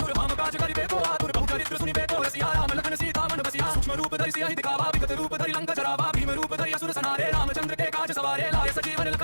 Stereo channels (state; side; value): inverted; both; correlation -1.00